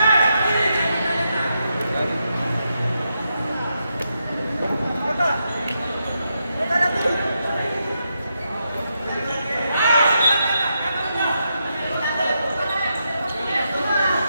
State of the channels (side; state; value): both; inverted; correlation -0.84